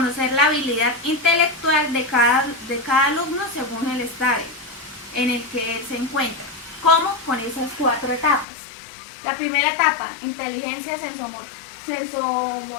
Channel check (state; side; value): drops out; right; at 8.5 s